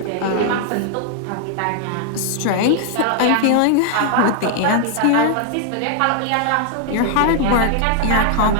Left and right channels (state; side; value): different; both; correlation 0.00